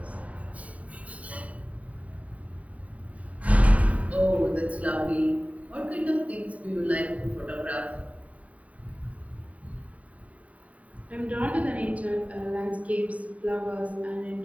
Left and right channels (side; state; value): left; late; 0.068 ms